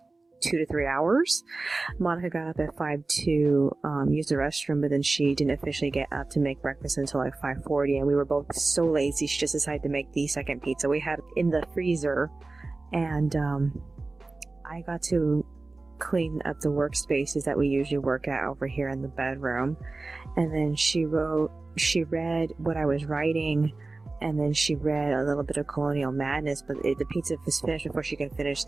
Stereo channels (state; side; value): quieter; left; 3.4 dB